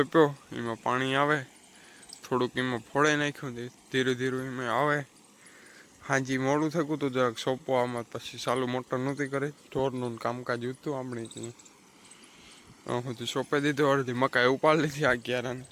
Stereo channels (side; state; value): both; identical; correlation 1.00